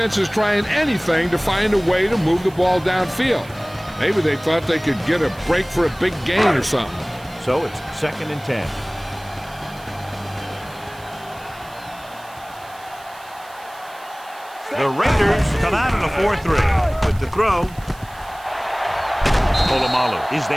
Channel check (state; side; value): noise; right; hiss, 23 dB below the sound